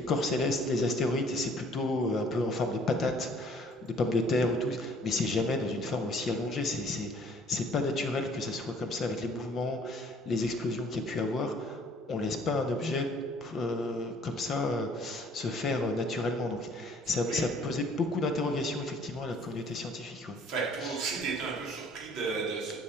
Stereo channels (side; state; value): both; normal; correlation 0.57